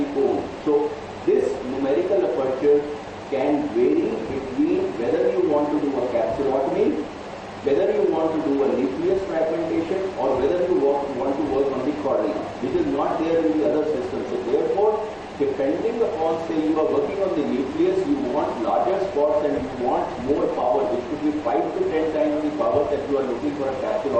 cone. So this numerical aperture can vary between whether you want to do a capsulotomy, whether you want to do a nucleus fragmentation, or whether you want to work on the cornea, which is not there in the other system. So therefore, depending upon, say you are working on the nucleus, you want larger spots and you want more power, which could be 5 to 10 times the power that you are looking for a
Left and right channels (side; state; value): both; identical; correlation 1.00